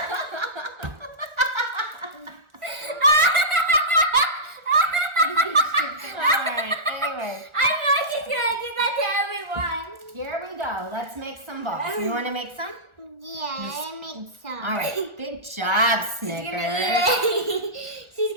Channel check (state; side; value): late; left; 1.4 ms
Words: Here we go. Let's make some balls. You want to make some? Yeah, I make some. All right. Good job, Snickers. She's